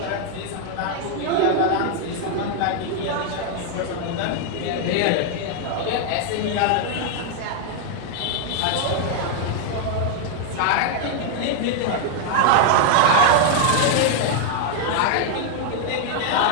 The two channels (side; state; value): both; different; correlation 0.00